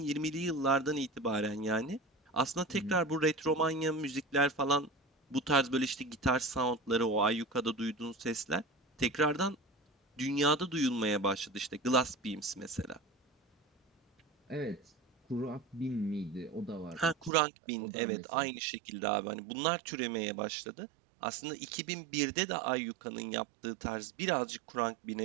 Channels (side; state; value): left; drops out; at 17.3 s